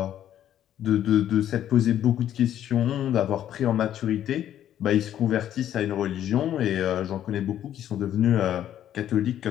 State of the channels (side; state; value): right; quieter; 11.1 dB